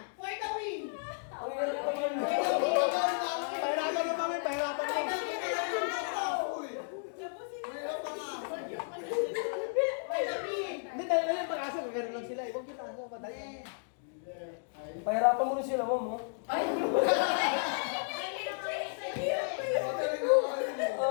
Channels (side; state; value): right; silent; digital silence